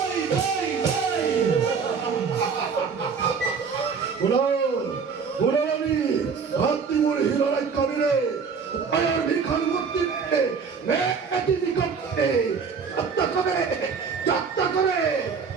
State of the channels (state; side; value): quieter; left; 5.7 dB